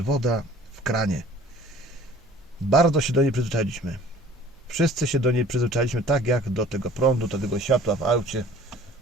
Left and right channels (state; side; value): normal; both; correlation 0.49